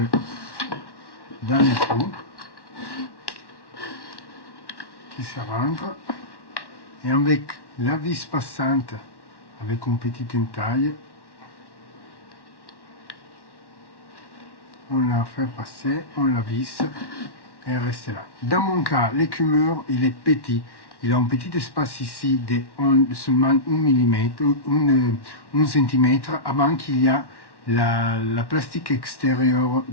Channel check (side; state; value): right; late; 1.1 ms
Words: dans les trous qui se rentrent. Et avec la vis passante, avec une petite entaille, on la fait passer, on la visse et elle reste là. Dans mon cas, l'écumeur, il est petit. Il a un petit espace ici de seulement 1 mm, 1 cm avant qu'il y a la plastique extérieure